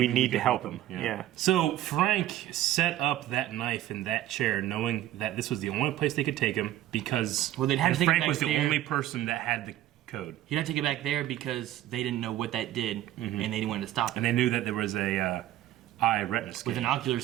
to can help him. You know? Yeah. So Frank set up that knife in that chair, knowing that this was the only place they could take him because they'd have to take it Frank back was the there. only person that had the code. He'd have to get back there because they didn't know what that did, and they didn't want to stop it. And they knew that there was a eye retina scan. With an ocular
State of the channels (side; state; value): left; quieter; 13.3 dB